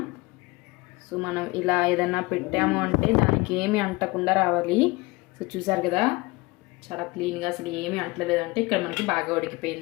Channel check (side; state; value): right; quieter; 23.6 dB